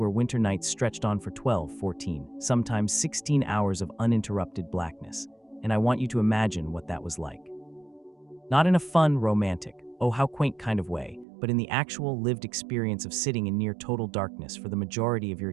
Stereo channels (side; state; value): left; drops out; at 11.2 s